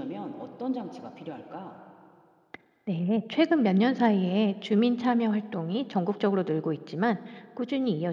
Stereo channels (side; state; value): both; identical; correlation 1.00